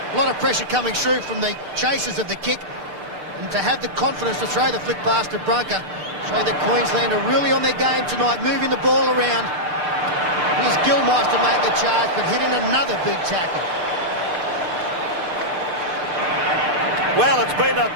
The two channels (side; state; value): left; late; 6.7 ms